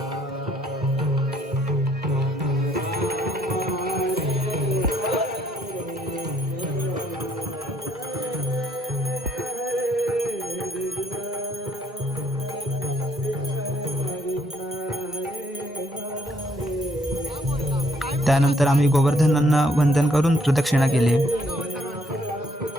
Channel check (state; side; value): normal; both; correlation 0.68